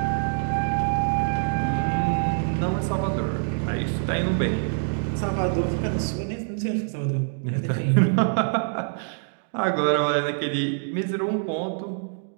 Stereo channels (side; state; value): left; silent; digital silence